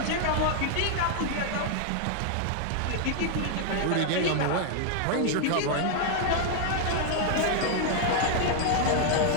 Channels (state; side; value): different; both; correlation 0.00